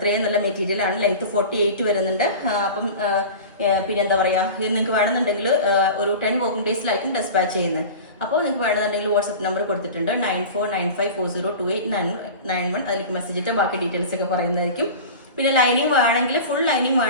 നല്ല മെറ്റീരിയൽ ആണ്. ലെങ്ത് 48 വരുന്നുണ്ട്. അപ്പം പിന്നെ എന്താ പറയാ, ഇത് നിങ്ങൾക്ക് വേണമെന്നുണ്ടെങ്കിൽ ഒരു 10 വർക്കിംഗ് ഡേയ്സിലായിരിക്കും ഡെസ്പാച്ച് ചെയ്യുന്നത്. അപ്പോൾ നിങ്ങൾക്ക് വേണമെന്നുണ്ടെങ്കിൽ വാട്സ്ആപ്പ് നമ്പർ കൊടുത്തിട്ടുണ്ട് 9495402891. അതിലേക്ക് മെസ്സേജ് ഇട്ട് ബാക്കി ഡീറ്റെയിൽസ് ഒക്കെ പറയുന്നതായിരിക്കും. പിന്നെ ലൈനിങ് വേണമെങ്കിൽ ഫുൾ ലൈനിങ്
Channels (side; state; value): both; inverted; correlation -0.34